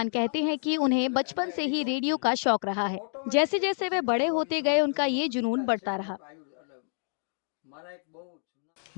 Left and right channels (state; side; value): silent; right; digital silence